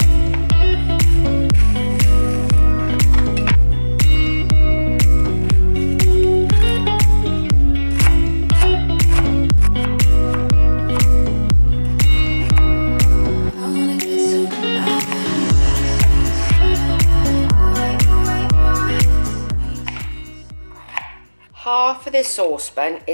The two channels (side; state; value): both; inverted; correlation -1.00